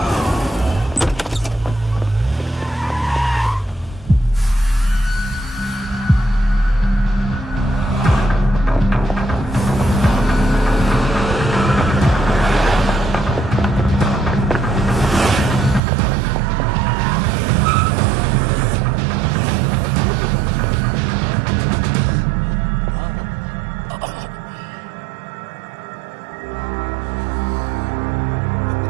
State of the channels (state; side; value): drops out; left; at 15.8 s